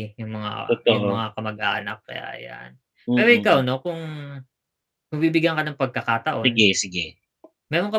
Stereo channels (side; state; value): both; identical; correlation 1.00